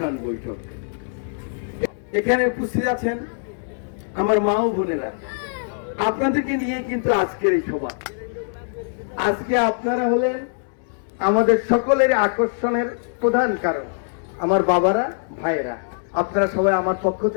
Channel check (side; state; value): right; silent; digital silence